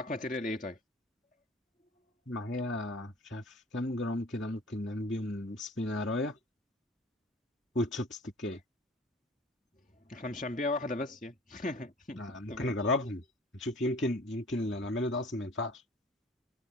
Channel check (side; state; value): both; normal; correlation 0.46